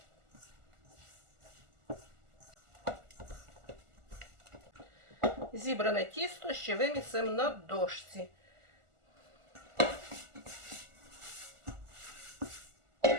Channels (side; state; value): left; late; 1.4 ms